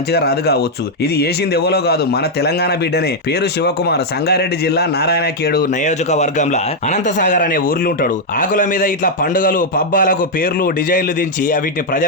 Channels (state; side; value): normal; both; correlation -0.02